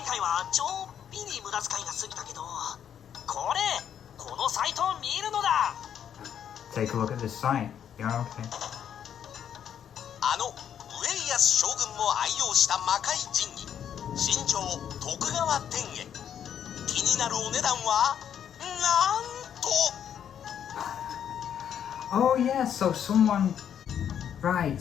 Take a look at this site. Yeah, okay. 将軍も愛用した魔界陣に新庄徳川天へ気になるお値段はなんと Oh yeah, so someone... Right,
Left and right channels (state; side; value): quieter; right; 9.0 dB